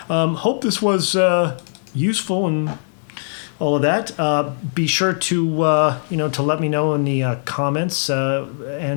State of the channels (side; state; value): right; silent; digital silence